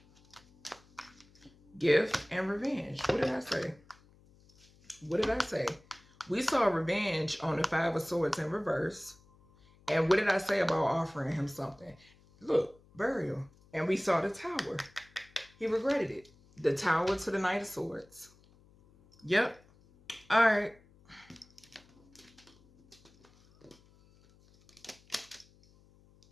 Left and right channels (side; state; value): left; noise; hum, 28 dB below the sound